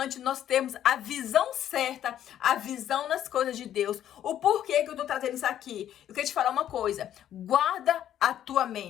nós termos a visão certa, a visão nas coisas de Deus. O porquê que eu estou trazendo isso aqui? Eu quero te falar uma coisa. Guarda a tua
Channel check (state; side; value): quieter; right; 11.0 dB